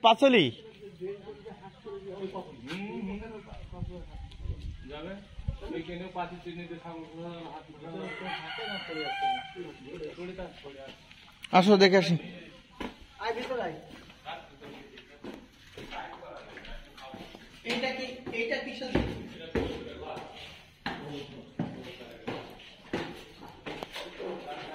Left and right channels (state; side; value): identical; both; correlation 1.00